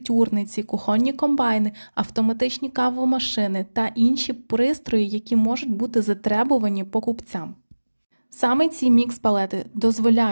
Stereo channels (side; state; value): both; inverted; correlation -1.00